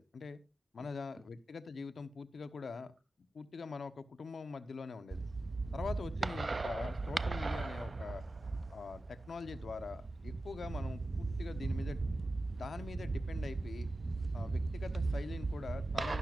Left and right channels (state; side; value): normal; both; correlation 0.92